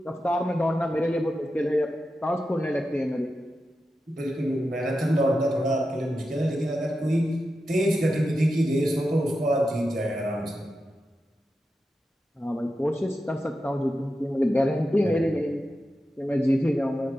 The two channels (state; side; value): normal; both; correlation 0.90